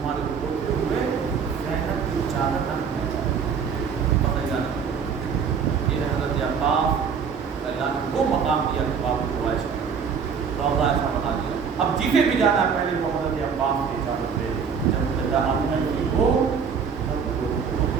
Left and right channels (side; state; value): left; quieter; 6.4 dB